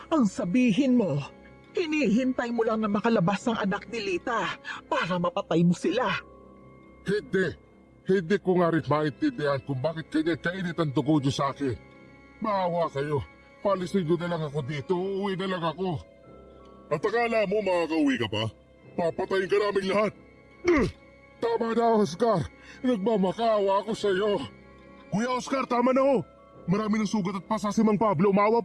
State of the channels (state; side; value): identical; both; correlation 1.00